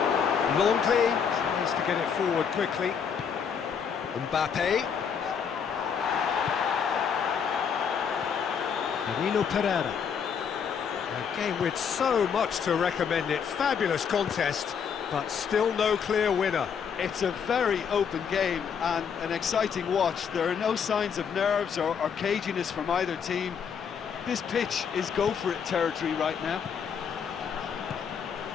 Longley tries to get it forward quickly. Mbappe. Danilo Pereira. A game with so much to recommend it. Fabulous contest, but still no clear winner. It's a very open game and an exciting watch. There are no signs of nerves or caginess from either team. This pitch is go-for-it territory right now.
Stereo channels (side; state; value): right; quieter; 7.0 dB